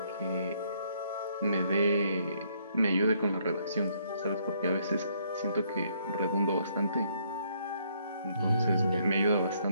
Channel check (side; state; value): both; inverted; correlation -0.69